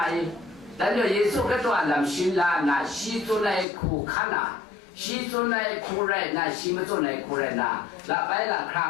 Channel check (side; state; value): right; drops out; at 3.7 s